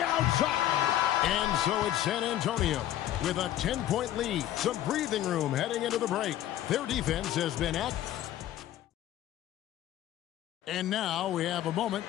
And so it's San Antonio with a 10-point lead. Some breathing room heading into the break. Their defense has been And now we have a moment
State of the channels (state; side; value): quieter; right; 12.7 dB